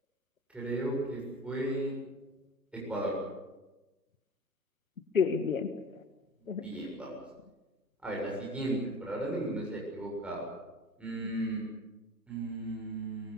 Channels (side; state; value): both; normal; correlation 0.38